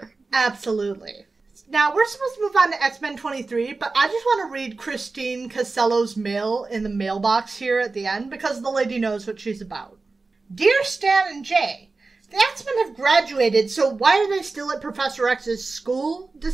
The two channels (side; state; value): left; quieter; 3.8 dB